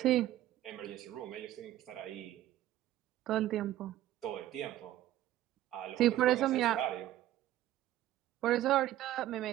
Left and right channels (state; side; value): quieter; left; 13.8 dB